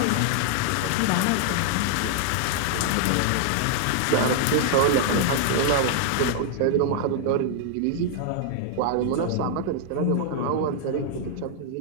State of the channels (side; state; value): both; different; correlation -0.01